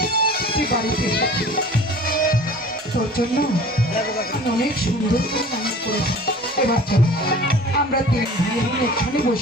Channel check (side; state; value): both; normal; correlation 0.44